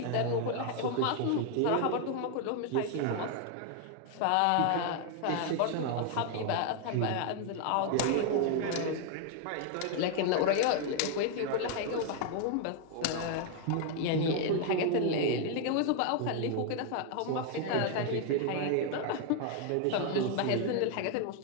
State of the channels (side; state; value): both; different; correlation 0.01